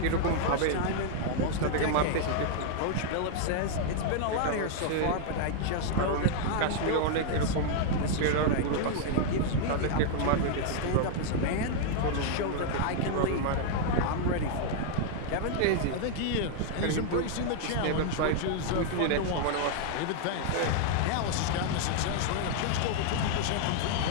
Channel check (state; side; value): different; both; correlation 0.00